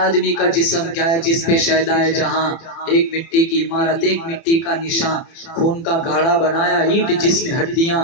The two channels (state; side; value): late; right; 30 ms